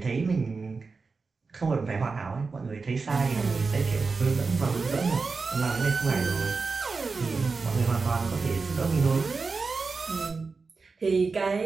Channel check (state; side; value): quieter; left; 4.4 dB